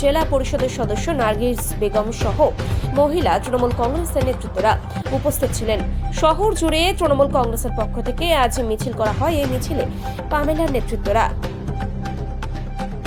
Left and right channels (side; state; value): both; identical; correlation 1.00